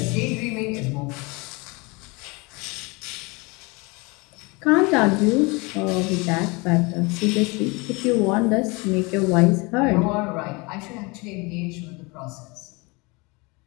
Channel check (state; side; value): quieter; right; 27.1 dB